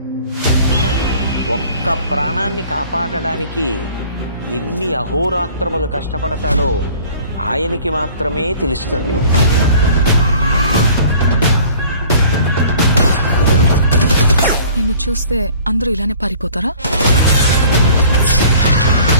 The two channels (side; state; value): both; inverted; correlation -0.50